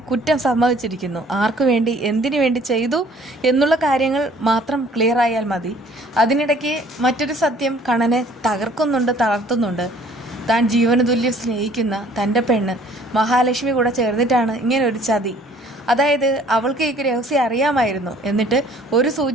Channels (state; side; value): normal; both; correlation 0.55